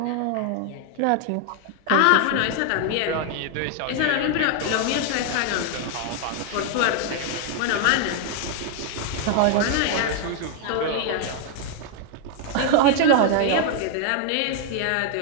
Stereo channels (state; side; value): different; both; correlation 0.00